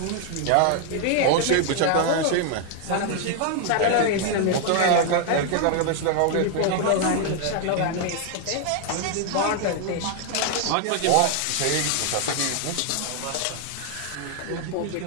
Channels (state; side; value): different; both; correlation 0.00